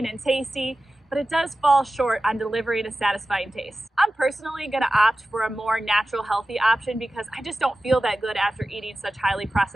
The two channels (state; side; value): normal; both; correlation 0.95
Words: and tasty, but it does fall short on delivering a satisfying taste. I'm personally gonna opt for a more natural, healthy option because I just don't feel that good after eating such highly